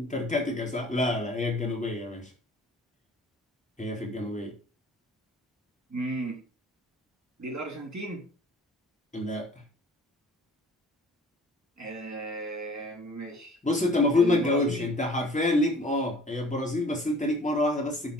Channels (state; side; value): normal; both; correlation 0.49